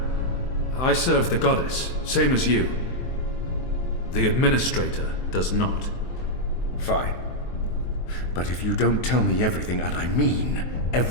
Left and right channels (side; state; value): right; late; 23 ms